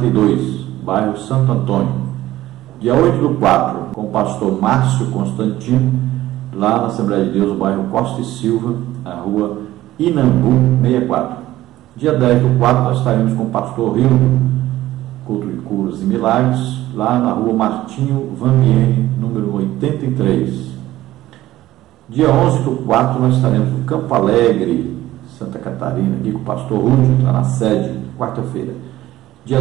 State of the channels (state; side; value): quieter; left; 15.3 dB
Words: bairro Santo Antônio. Dia 8/4, com o pastor Márcio Constantino, lá na Assembleia de Deus, bairro Costa e Silva, na rua Inambu 64. Dia 10/4, nós estaremos com o pastor Rildo, culto de curas e milagres, lá na rua Martinho Vamiene, número 83. Dia 11/4, nós estaremos no Campo Alegre, Santa Catarina, aqui com o pastor Rúdio, lá na sede, quarta-feira. Dia